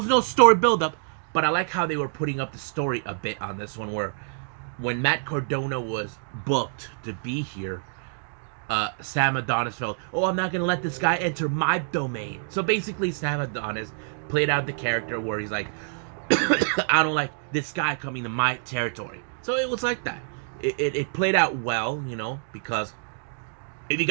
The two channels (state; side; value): silent; left; digital silence